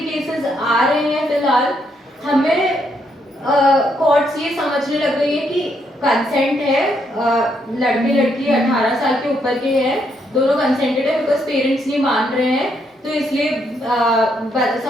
आ रहे हैं फिलहाल, हमें कोर्ट्स ये समझने लग गई है कि कंसेंट है, लड़के लड़की 18 साल के ऊपर के हैं, दोनों कंसेंटेड है, बिकॉज पेरेंट्स नहीं मान रहे हैं, तो इसलिए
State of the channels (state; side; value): normal; both; correlation 0.75